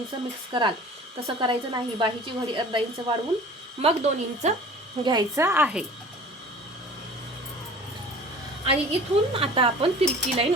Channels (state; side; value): normal; both; correlation 0.43